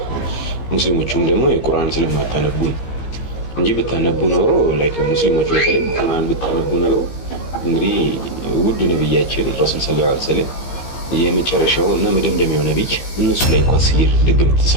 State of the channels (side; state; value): right; late; 15 ms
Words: ሙስሊሞቹም ደግሞ የቁርአን ስለማታነቡ እንጂ ብታነቡ ኖሮ ላይክ ሙስሊሞቹ በተለይ ቁርአን ብታነቡ ኖሮ እንግዲህ ውድ ነብያችን ረሱል ሰለላሁ ዐለይሂ ወሰለም የመጨረሻው እና መደምደሚያው ነብይ እነሱ ላይ እንኳን ሲር ድግም